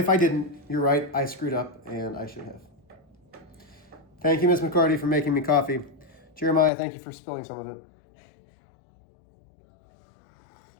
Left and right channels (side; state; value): right; drops out; at 6.7 s